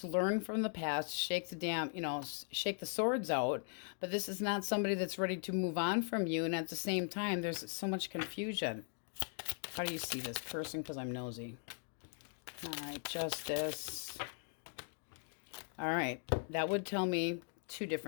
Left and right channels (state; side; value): silent; right; 52 dB below the other